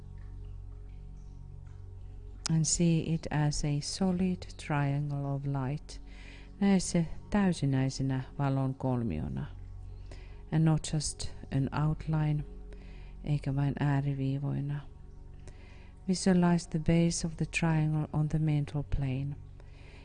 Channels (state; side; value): identical; both; correlation 1.00